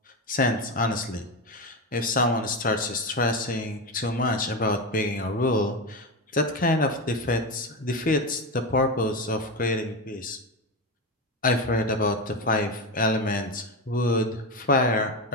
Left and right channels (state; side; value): normal; both; correlation 0.16